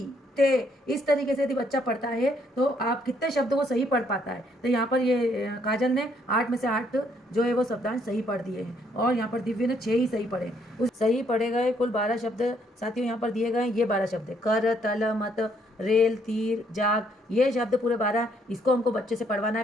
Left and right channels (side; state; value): both; normal; correlation 0.69